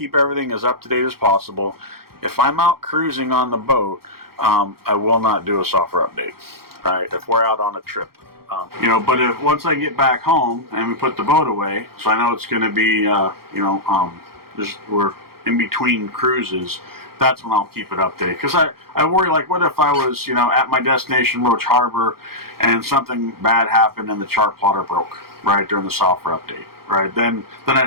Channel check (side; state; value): left; late; 0.94 ms